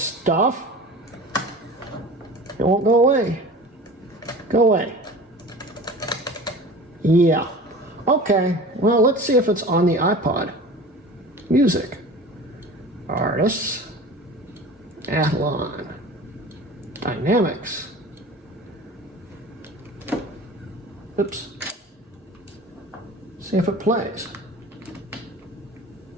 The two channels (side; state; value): both; normal; correlation 0.38